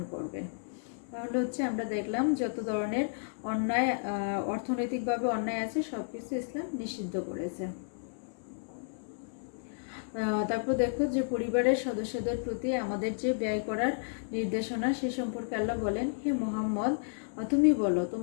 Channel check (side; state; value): right; silent; 56 dB below the other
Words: করবে। তাহলে হচ্ছে আমরা দেখলাম যত ধরনের অন্যায়, অর্থনৈতিকভাবে অন্যায় আছে, সবকিছু ইসলাম নিষিদ্ধ করেছে। তারপর দেখো যে পরিবারের সদস্যদের প্রতি আমাদের যে ব্যয় করার নির্দেশনা, সে সম্পর্কে আল্লাহ বলেন, হে মুহাম্মদ, তুমি বলো,